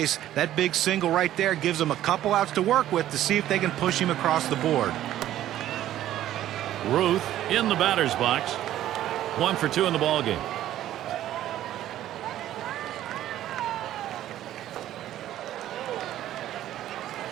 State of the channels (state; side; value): quieter; left; 12.8 dB